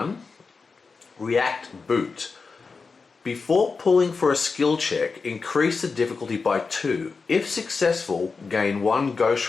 React Boot. Before pulling for a skill check, increase the difficulty by 2. If successful, gain 1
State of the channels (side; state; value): right; quieter; 4.6 dB